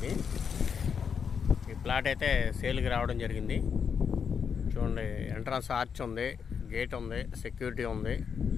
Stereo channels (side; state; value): right; quieter; 6.7 dB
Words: ఈ ప్లాట్ అయితే సేల్కి రావడం జరిగింది. చూడండి, ఎంట్రన్స్ ఆర్చ్ ఉంది, గేట్ ఉంది, సెక్యూరిటీ ఉంది.